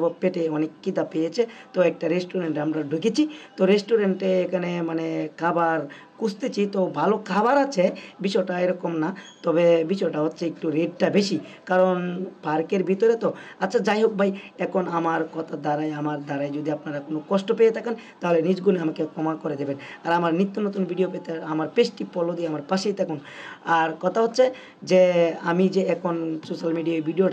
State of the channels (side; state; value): both; identical; correlation 1.00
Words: পেটে অনেক খিদা পেয়েছে। তো একটা রেস্টুরেন্টে আমরা ঢুকেছি। তো রেস্টুরেন্টে এখানে মানে খাবার খুঁজতেছি, তো ভালো খাবার আছে, বিষয়টা এরকম না। তবে বিষয়টা হচ্ছে একটু রেটটা বেশি, কারণ পার্কের ভিতরে তো। আচ্ছা যাই হোক ভাই, এখন আমার আমার দ্বারায় যদি আপনারা কোনো কষ্ট পেয়ে থাকেন তাহলে নিজ গুণে আমাকে ক্ষমা করে দেবেন। আর আমার নিত্য নতুন ভিডিও পেতে আমার পেজটি ফলো দিয়ে আমার পাশেই থাকুন। আর কথা হচ্ছে যে আমি যে এখন সোশ্যাল মিডিয়ায়